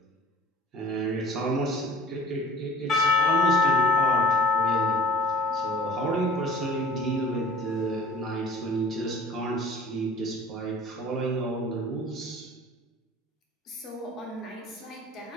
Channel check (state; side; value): normal; both; correlation 0.46